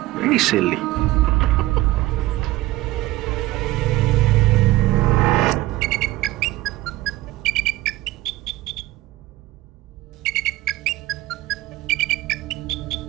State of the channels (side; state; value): left; quieter; 17.6 dB